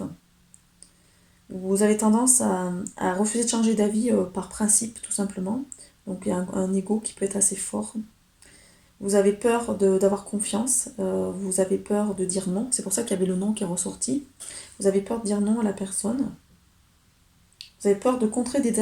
Vous avez tendance à refuser de changer d'avis par principe, tout simplement. Donc il y a un ego qui peut être assez fort. Vous avez peur d'avoir confiance, vous avez peur de dire non. C'est pour ça qu'il y avait le non qui est ressorti. Vous avez peur de dire non à la personne. Vous avez peur de contrer des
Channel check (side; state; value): both; identical; correlation 1.00